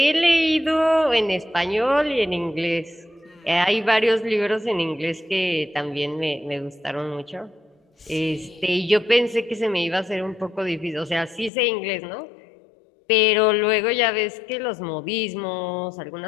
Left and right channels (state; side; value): drops out; right; at 11.5 s